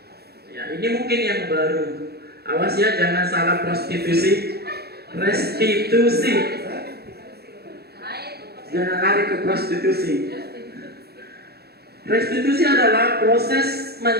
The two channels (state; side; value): late; left; 0.46 ms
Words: Ya, ini mungkin yang baru. Awas ya, jangan salah prostitusi. Restitusi. Jangan lari ke prostitusi. Restitusi adalah proses